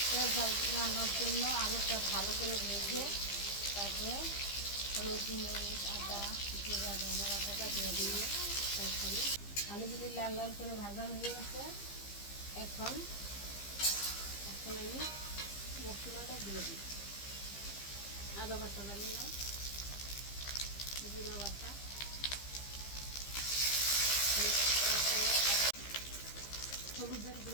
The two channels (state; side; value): late; right; 15 ms